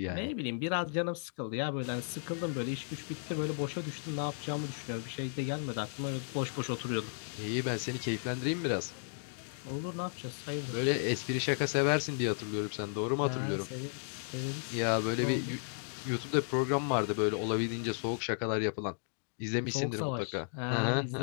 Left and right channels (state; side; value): silent; right; digital silence